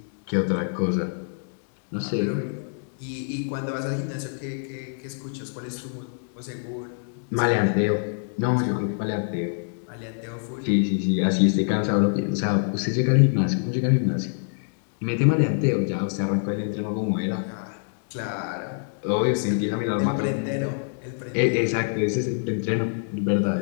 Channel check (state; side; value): silent; right; digital silence